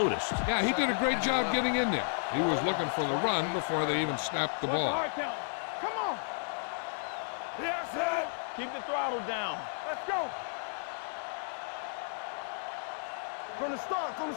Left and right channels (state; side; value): silent; right; digital silence